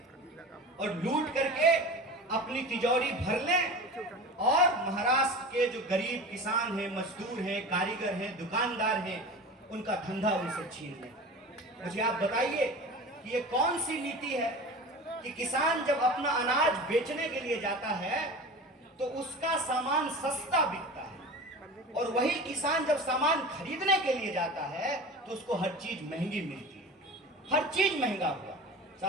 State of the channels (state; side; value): normal; both; correlation 0.33